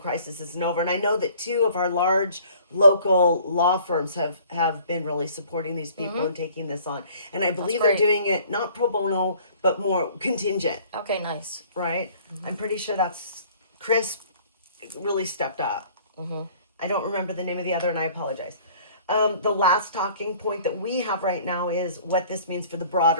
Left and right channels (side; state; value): both; inverted; correlation -0.53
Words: isn't over. And I know that 2 of our large local law firms have been really supporting these people and taking this on. And I believe they're great. doing it not pro bono, but more contingent, Okay, nice. right? I'm pretty sure that's Chris really stepped up. I don't remember the name of the other, and I apologize. The last talking point that we have right now is what this means for the